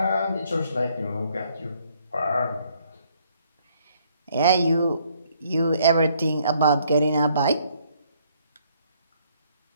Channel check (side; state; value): both; inverted; correlation -0.66